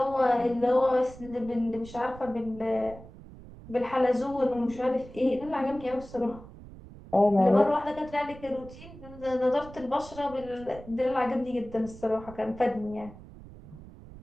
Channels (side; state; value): right; noise; rumble, 17 dB below the sound